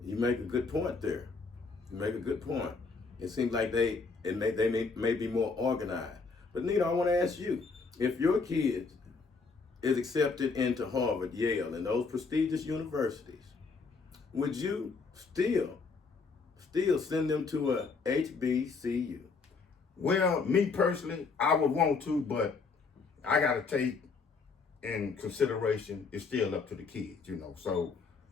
You make a good point there. You make a good point. It seems like they may be more organized. But Nita, I want to ask you, if your kid is accepted into Harvard, Yale, and those prestigious universities, would you still send them to a HBCU? Well, me personally, I would want to, but I got to take in consideration it's still up to the kids, you know. So,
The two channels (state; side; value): quieter; right; 4.6 dB